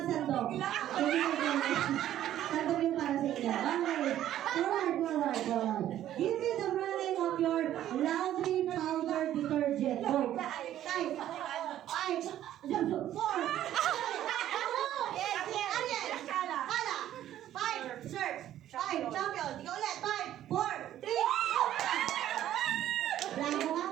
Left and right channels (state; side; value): quieter; left; 12.2 dB